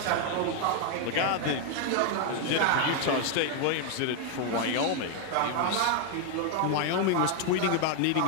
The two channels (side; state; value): both; different; correlation 0.01